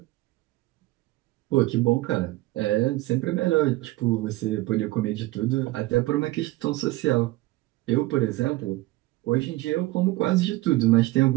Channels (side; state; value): left; quieter; 19.1 dB